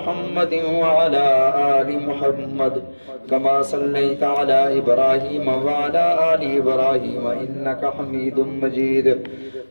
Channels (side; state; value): both; inverted; correlation -1.00